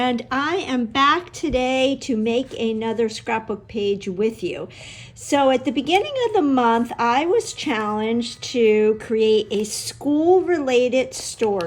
I am back today to make another scrapbook page with you. So at the beginning of the month, I was challenged to create a school-related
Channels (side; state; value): both; identical; correlation 1.00